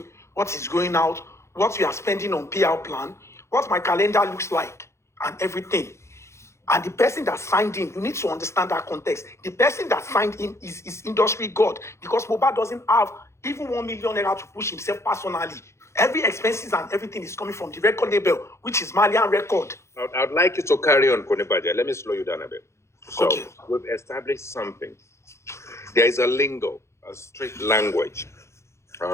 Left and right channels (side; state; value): right; late; 0.13 ms